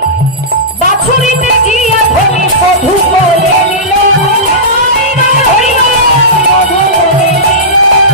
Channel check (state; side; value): normal; both; correlation -0.16